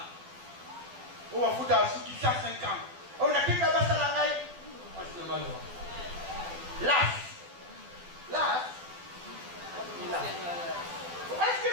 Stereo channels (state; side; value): late; left; 12 ms